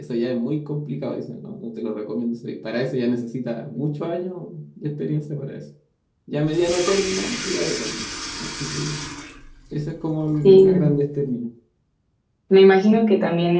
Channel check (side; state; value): both; identical; correlation 1.00